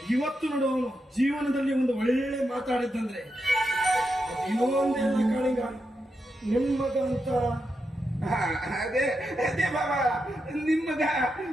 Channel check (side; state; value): both; normal; correlation 0.86